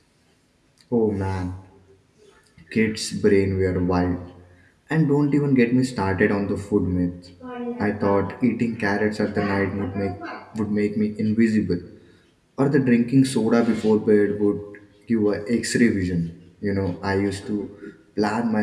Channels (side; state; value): both; identical; correlation 1.00